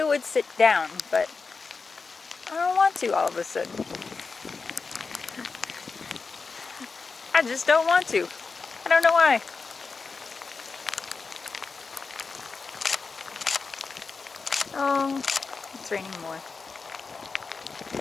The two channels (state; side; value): quieter; right; 4.6 dB